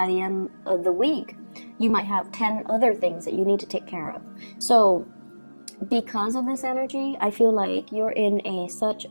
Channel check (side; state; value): both; inverted; correlation -1.00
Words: the end of the week, you might have 10 other things that you need to take care of. So because of this energy, I feel like you're in such